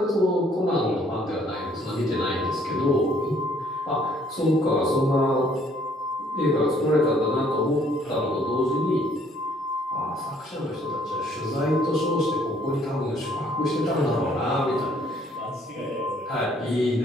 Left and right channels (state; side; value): normal; both; correlation 0.63